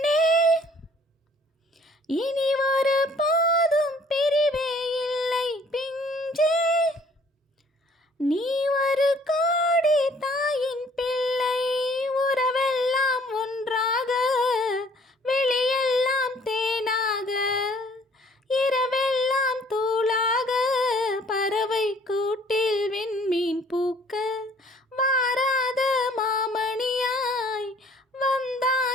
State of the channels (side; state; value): both; normal; correlation 0.57